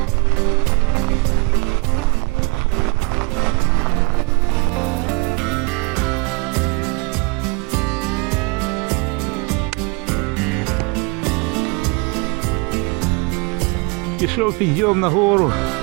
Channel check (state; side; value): quieter; left; 29.8 dB